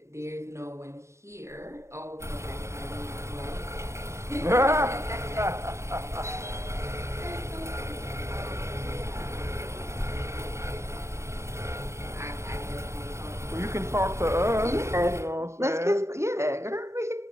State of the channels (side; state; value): left; late; 0.14 ms